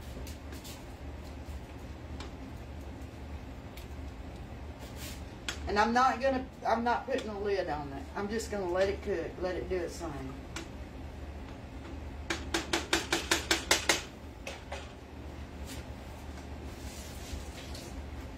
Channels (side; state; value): both; identical; correlation 1.00